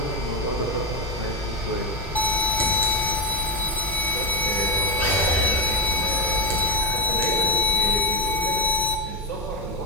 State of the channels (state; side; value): normal; both; correlation 0.10